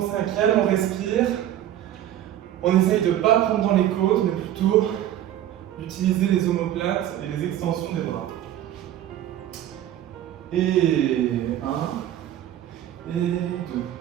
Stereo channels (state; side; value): quieter; left; 12.0 dB